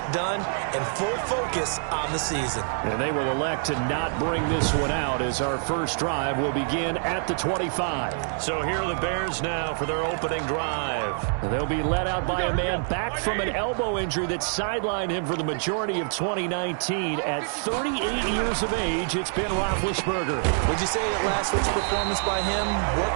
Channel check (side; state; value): left; silent; 61 dB below the other